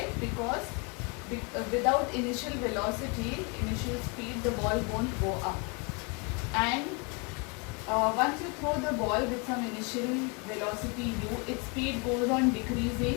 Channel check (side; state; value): right; quieter; 31.3 dB